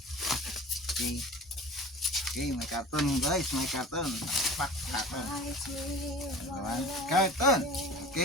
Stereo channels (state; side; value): normal; both; correlation 0.39